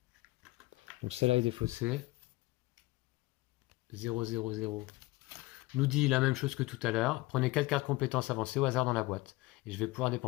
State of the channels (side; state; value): right; quieter; 20.3 dB